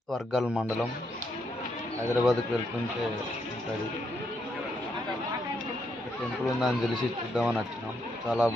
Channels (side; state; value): both; normal; correlation 0.77